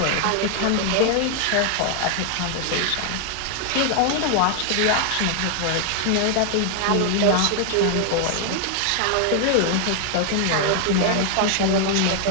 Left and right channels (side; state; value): both; different; correlation 0.00